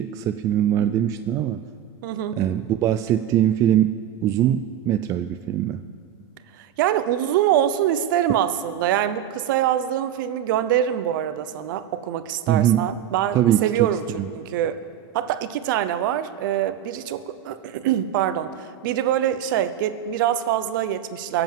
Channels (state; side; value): quieter; left; 10.6 dB